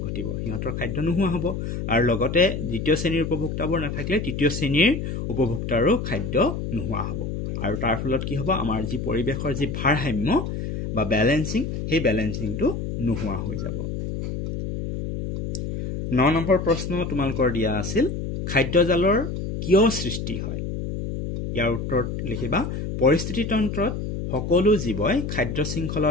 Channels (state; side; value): noise; left; hum, 4 dB below the sound